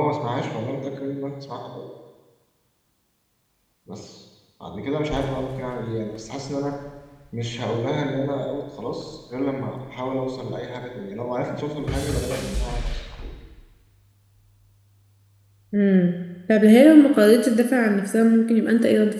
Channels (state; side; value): identical; both; correlation 1.00